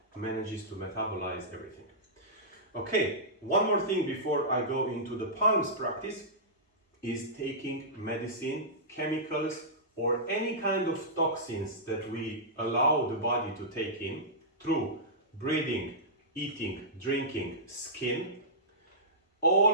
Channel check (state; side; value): normal; both; correlation -0.16